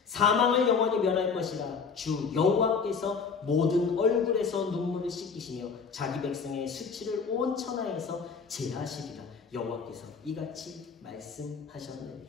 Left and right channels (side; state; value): right; quieter; 5.6 dB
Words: 사망을 영원히 멸할 것이라 주 여호와께서 모든 얼굴에서 눈물을 씻기시며 자기 백성의 수치를 온 천하에서 제하시리라. 여호와께서 이같이 말씀하셨느니라.